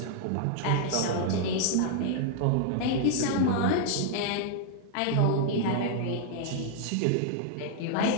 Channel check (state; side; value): different; both; correlation 0.00